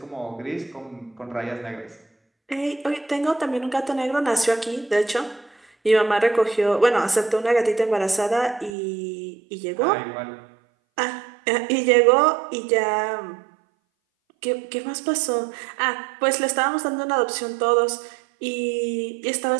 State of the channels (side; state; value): left; drops out; at 8.7 s